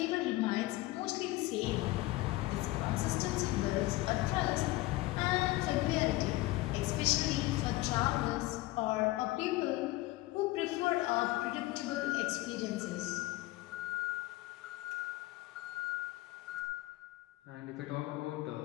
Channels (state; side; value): quieter; right; 19.1 dB